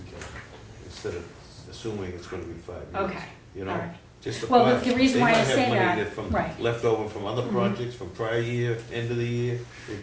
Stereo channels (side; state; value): both; identical; correlation 1.00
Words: can, instead of assuming it's gonna be 5 years. Okay, You all know, right. just a Well, plan. the reason why I say They might have money that, from, right. left over from other Mhm. projects, from prior year, end of the year,